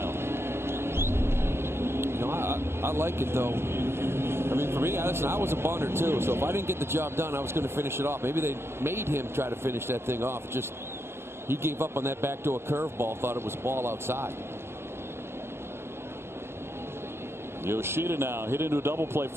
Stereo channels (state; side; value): late; left; 0.12 ms